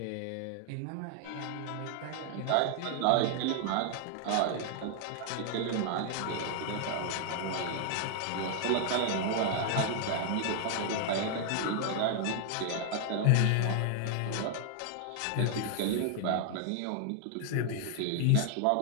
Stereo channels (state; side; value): different; both; correlation 0.00